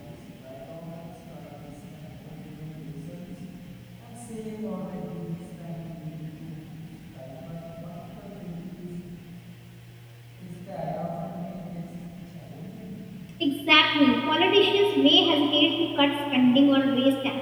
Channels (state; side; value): identical; both; correlation 1.00